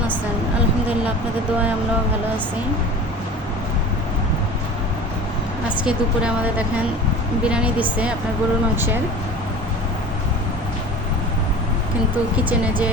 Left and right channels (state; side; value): normal; both; correlation 0.38